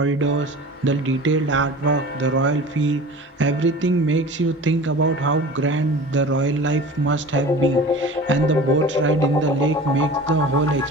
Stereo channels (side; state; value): both; normal; correlation 0.39